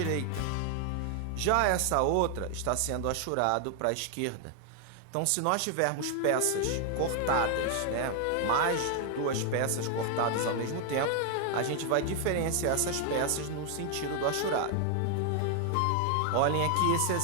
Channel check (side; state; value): both; different; correlation 0.00